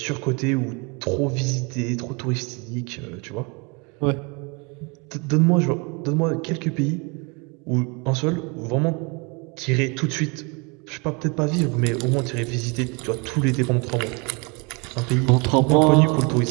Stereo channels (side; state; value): left; quieter; 30.6 dB